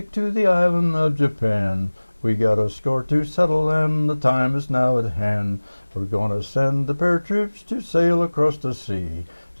to the island of Japan, we got a score to settle, and the time is now at hand. We're gonna send the paratroops to sail across the sea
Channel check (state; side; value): inverted; both; correlation -1.00